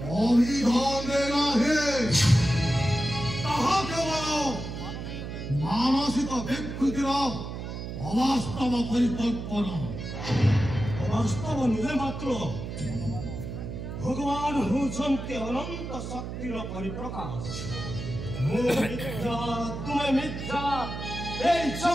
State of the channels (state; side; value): noise; right; hum, 7 dB below the sound